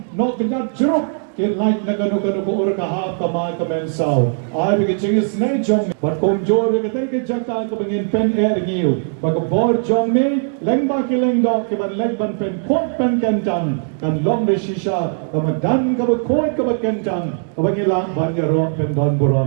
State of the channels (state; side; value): silent; left; digital silence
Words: No kanya jeruk. Kaya like na gano-gano ko ora kahap ka mga kamensaw. Ay bigay na jong. But kung joro ka tayo ka bangin pen niyo. Pagkabor jong me, leng ba kilengdo, kiban legban pen kot pen kentang. Kan long de shisha, kamadan ka kot ka kentang. Kabangilang banyaro pen don